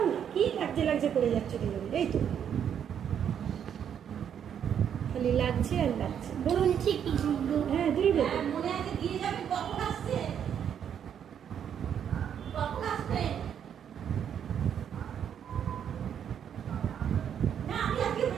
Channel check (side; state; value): left; quieter; 8.7 dB